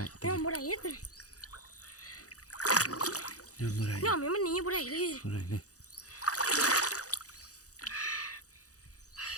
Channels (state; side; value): late; right; 0.67 ms